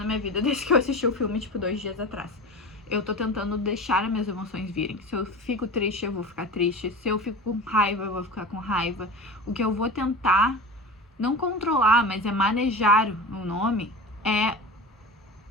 minha vida desde que eu assisti o filme, tipo, 2 dias atrás. Eu tô tentando deixar as minhas emoções virem. Se eu fico triste, eu vou ficar triste. Se eu fico com raiva, eu vou ficar com raiva. O que eu vou tentar, não controlar, mas é manejar o nome, é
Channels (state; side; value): normal; both; correlation 0.31